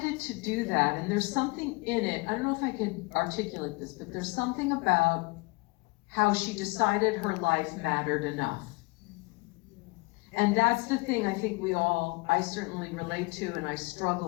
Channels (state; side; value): quieter; right; 26.2 dB